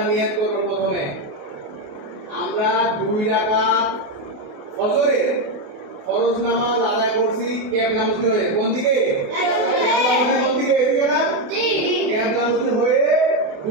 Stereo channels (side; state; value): left; late; 28 ms